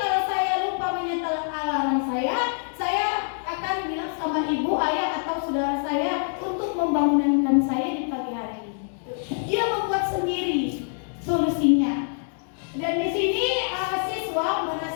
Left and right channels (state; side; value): silent; right; digital silence